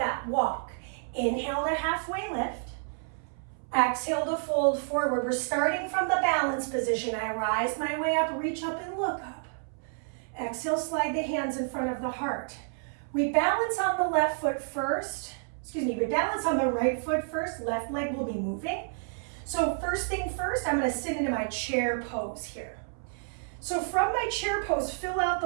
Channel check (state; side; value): silent; left; 58 dB below the other